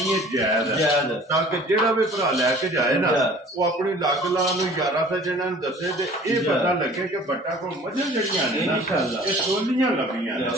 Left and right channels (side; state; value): both; normal; correlation 0.48